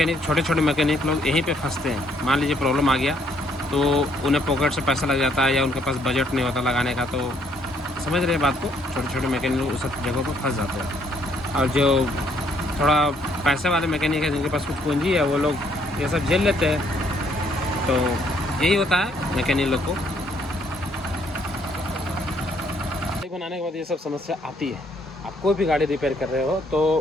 छोटे छोटे मैकेनिक लोग यहीं पे फंसते हैं। मान लीजिए प्रॉब्लम आ गया तो उन्हें पॉकेट से पैसा लग जाता है, या उनके पास बजट नहीं होता लगाने का। तो समझ रहे हैं बात को, छोटे छोटे मैकेनिक लोग उस जगहों पर फंस जाते हैं। और जो थोड़ा पैसे वाले मैकेनिक है, जिनके पास कुछ पूंजी है, वो लोग ये सब झेल लेते हैं। तो यही होता है मैकेनिक लोग को। बनाने के बाद ये सब समस्या आती है। आप कोई भी गाड़ी रिपेयर कर रहे हो तो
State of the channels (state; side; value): normal; both; correlation 0.68